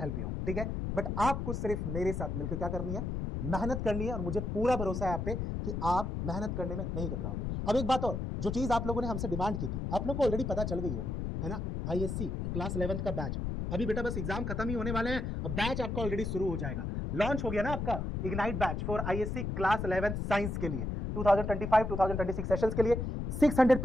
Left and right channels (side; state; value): left; noise; rumble, 3 dB below the sound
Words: you out, ठीक है। बट आपको सिर्फ मेरे साथ मिलकर क्या करनी है, मेहनत करनी है, और मुझे पूरा भरोसा है आप पे कि आप मेहनत करने में नहीं कतराओगे। अब एक बात और, जो चीज आप लोगों ने हमसे डिमांड की थी, आप लोग को ऑलरेडी पता चल गई होगी, है ना, आईएससी क्लास 11th का बैच, अभी बेटा बस एग्जाम खत्म ही होने वाले हैं, अब बैच आपका ऑलरेडी शुरू हो जाएगा, लॉन्च हो गया ना आपका ignite batch for ISC class 11th science के लिए 2025-2026 सेशंस के लिए